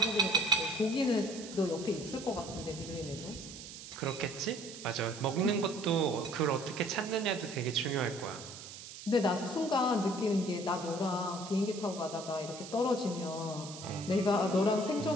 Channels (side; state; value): right; noise; hiss, 13 dB below the sound